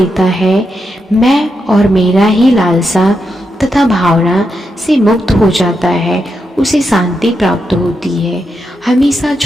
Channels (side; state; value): both; normal; correlation 0.84